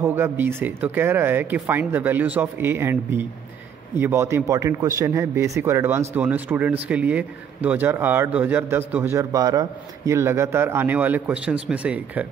होगा b से, तो कह रहा है कि find the values of a and b। ये बहुत ही इंपॉर्टेंट क्वेश्चन है, बेसिक और एडवांस दोनों स्टूडेंट्स के लिए। 2008, 2010, 2012 ये लगातार आने वाले क्वेश्चंस में से एक है।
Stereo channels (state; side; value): quieter; left; 8.0 dB